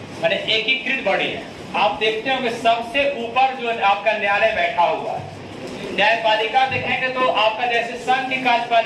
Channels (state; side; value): identical; both; correlation 1.00